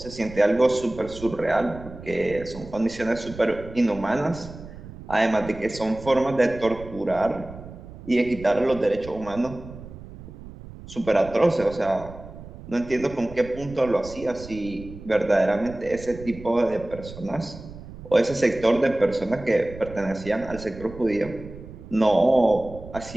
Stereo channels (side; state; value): right; noise; rumble, 15 dB below the sound